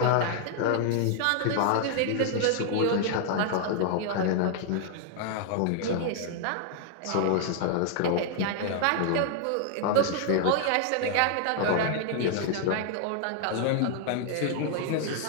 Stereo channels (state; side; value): different; both; correlation 0.00